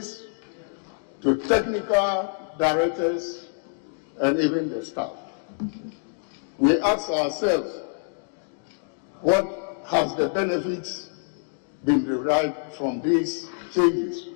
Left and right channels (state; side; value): silent; right; digital silence